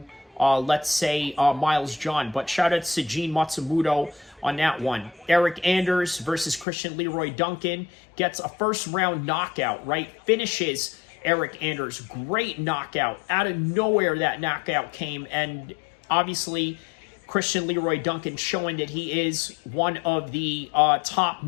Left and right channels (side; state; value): right; drops out; at 6.7 s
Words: let's say, Miles John. But shout out to Gene Matsumoto on that one. Eric Anders versus Christian Leroy Duncan gets a first-round knockout, right? Finishes Eric Anders. Great knockout. Out of nowhere that knockout came, and obviously Christian Leroy Duncan showing that he is one of the top